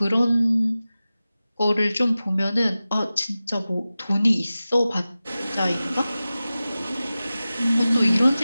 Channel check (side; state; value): both; inverted; correlation -0.96